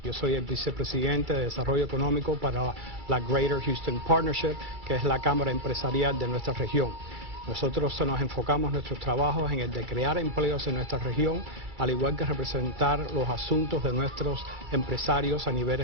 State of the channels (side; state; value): left; late; 2.3 ms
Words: Yo soy el vicepresidente de Desarrollo Económico para la Greater Houston Partnership, que es la cámara empresarial de nuestra región. Nosotros nos enfocamos nuestros trabajos en el de crear empleos en nuestra región, al igual que representar los asuntos de nuestros empresarios a nivel